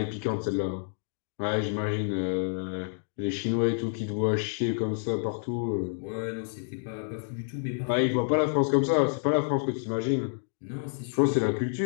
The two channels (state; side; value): silent; right; digital silence